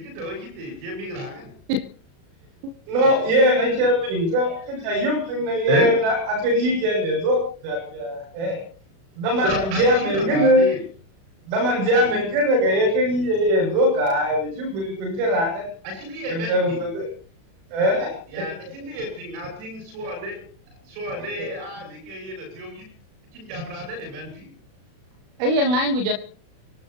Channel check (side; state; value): left; late; 36 ms